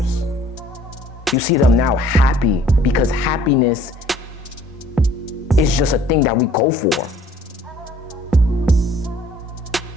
You see them now happy because happiness is just a thing that we go for.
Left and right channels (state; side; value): normal; both; correlation 0.56